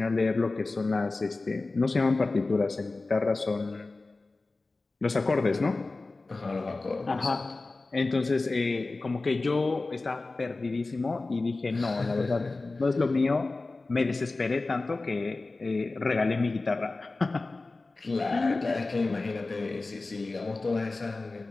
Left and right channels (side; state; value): right; quieter; 3.4 dB